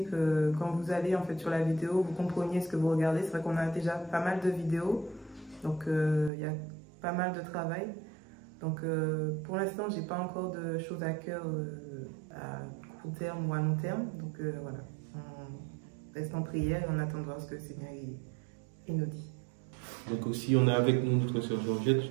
que quand vous allez en fait sur la vidéo, vous compreniez ce que vous regardez. C'est vrai qu'on a déjà pas mal de vidéos, donc il y a pas mal de travail. Donc pour l'instant, j'ai pas encore de choses à cœur à court terme ou à long terme. Donc voilà, on reste en prière et on attend de voir ce que le Seigneur il nous dit. Donc aussi, on a avec nous notre sœur Georgette. Je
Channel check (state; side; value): drops out; left; at 6.3 s